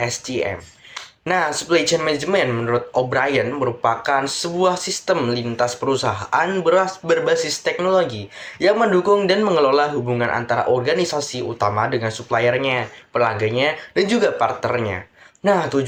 Nah, Supply Chain Management menurut O'Brien merupakan sebuah sistem lintas perusahaan berbasis teknologi yang mendukung dan mengelola hubungan antara organisasi utama dengan suppliernya, pelanggannya, dan juga partnernya. Nah,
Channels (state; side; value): identical; both; correlation 1.00